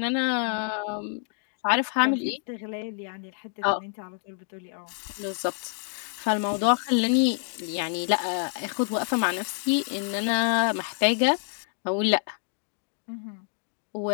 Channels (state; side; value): silent; right; 59 dB below the other